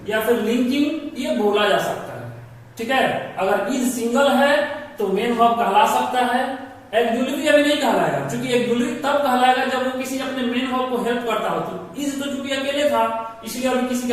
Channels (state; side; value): identical; both; correlation 1.00